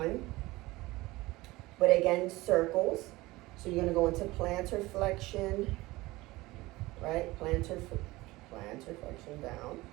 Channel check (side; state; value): left; quieter; 20.0 dB